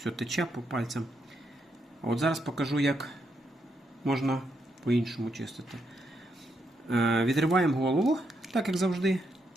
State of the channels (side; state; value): both; normal; correlation 0.79